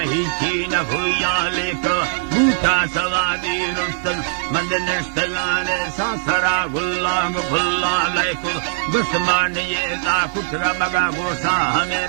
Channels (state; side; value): silent; left; digital silence